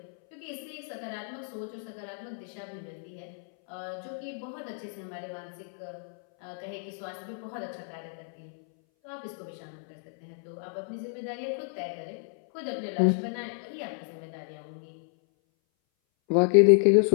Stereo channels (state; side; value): silent; right; 57 dB below the other